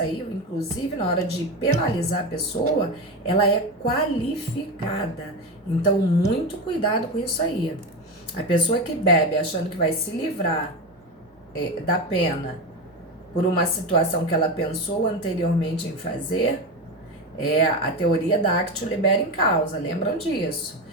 inclusive na hora de penalizar a pessoa, ela é qualificada. Então, muito cuidado com isso aí. A pessoa que bebe achando que vai se livrar da pena por uma situação que ela pensou anteriormente em fazer, a teoria da actio libera in causa, lembram disso?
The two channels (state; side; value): normal; both; correlation 0.18